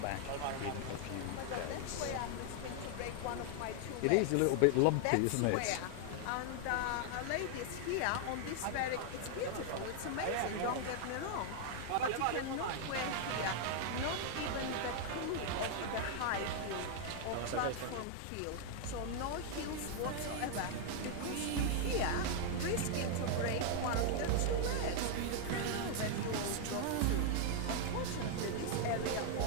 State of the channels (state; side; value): different; both; correlation 0.00